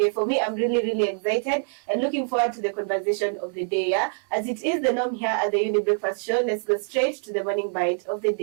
For me, I'm really excited and looking forward to the conversation of the day. Yeah, as it is the norm here at the Younib Breakfast Show, let's go straight to the morning bite of the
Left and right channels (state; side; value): silent; left; digital silence